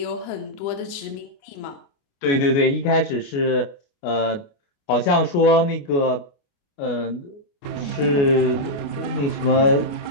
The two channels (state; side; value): late; right; 29 ms